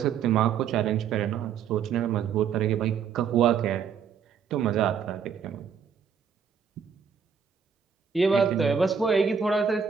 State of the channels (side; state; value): left; quieter; 7.0 dB